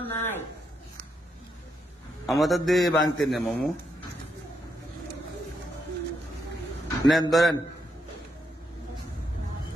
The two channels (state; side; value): normal; both; correlation 0.80